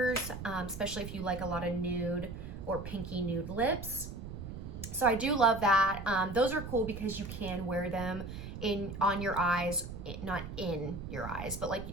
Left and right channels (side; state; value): right; noise; rumble, 9 dB below the sound